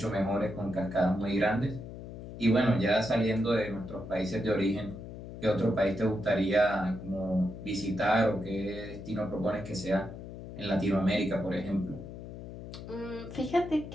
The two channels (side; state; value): left; noise; hum, 11 dB below the sound